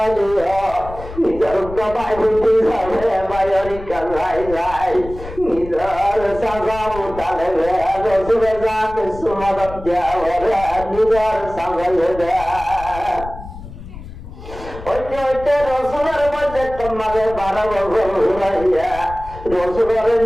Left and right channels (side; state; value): left; noise; rumble, 13 dB below the sound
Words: নিজের গবাই বুঝি যাবে বাইরি কালাই যাই নিজের সাজাও তালে রসুলে যাকে সুমদত দেওয়া নিজের সাজাইলে দেয় হইতে রসুলের মধ্যে তোমাদের 12 বছর হইয়া রসুলের